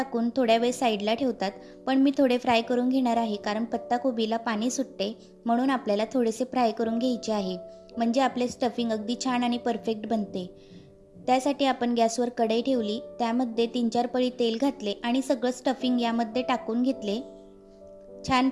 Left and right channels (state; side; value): identical; both; correlation 1.00